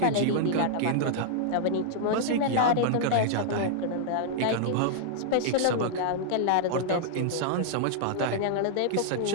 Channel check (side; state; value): both; different; correlation -0.01